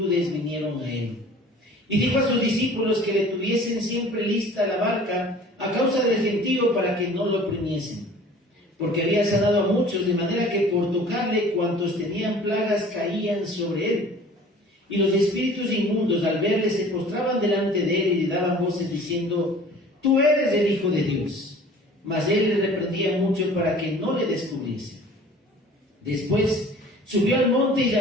vinieron a él. Y dijo a sus discípulos que le tuviesen siempre lista la barca a causa del gentío, para que no lo oprimiesen, porque había sanado a muchos, de manera que por tocarle cuantos tenían plagas caían sobre él. Y los espíritus inmundos, al verle, se postraban delante de él y le daban voces diciendo: tú eres el Hijo de Dios. Mas él le reprendía mucho para que no le descubriese. Después subió al monte y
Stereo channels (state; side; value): normal; both; correlation 0.47